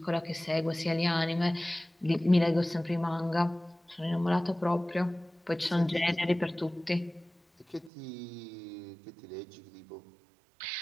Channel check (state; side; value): drops out; left; at 7.9 s